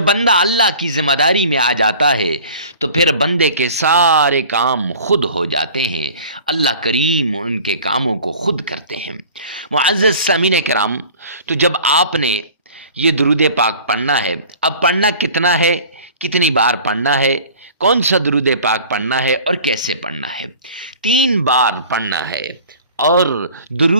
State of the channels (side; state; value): both; inverted; correlation -0.44